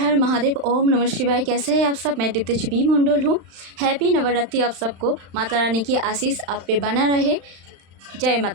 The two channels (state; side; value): late; left; 35 ms